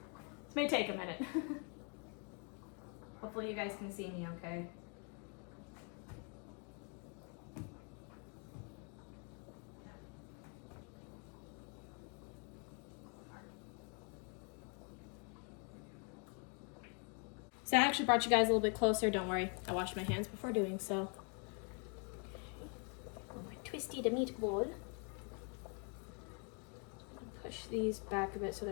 This may take a minute. Hopefully you guys can see me okay. So I actually brought you guys a little bit closer. Don't worry, I washed my hands before doing so. My twisty the meatball. Push these back a bit so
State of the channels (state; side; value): quieter; right; 35.9 dB